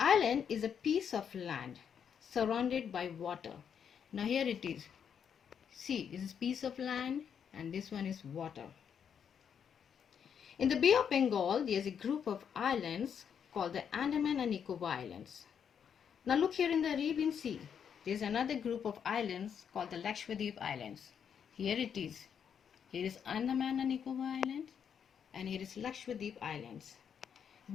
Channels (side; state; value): right; quieter; 7.7 dB